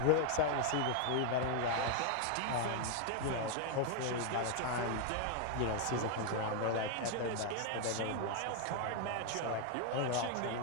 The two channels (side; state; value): both; different; correlation 0.00